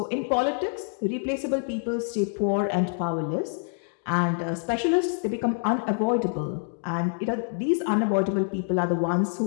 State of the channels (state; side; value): silent; right; 61 dB below the other